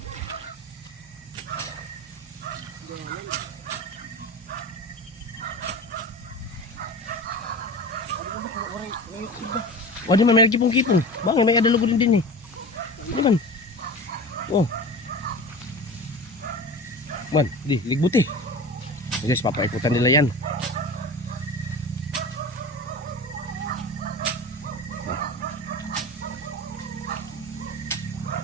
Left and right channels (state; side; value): normal; both; correlation 0.32